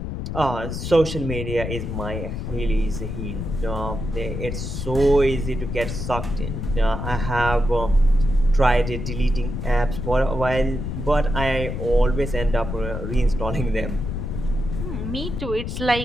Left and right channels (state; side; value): noise; left; rumble, 5 dB below the sound